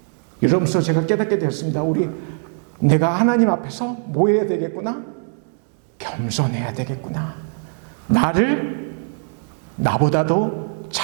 이러면서 제가 깨닫게 되었습니다. 내가 하나님 앞에서 뭐 해야 되겠구나? 겸손해야 되겠구나. 나를 나보다도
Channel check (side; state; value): left; silent; 56 dB below the other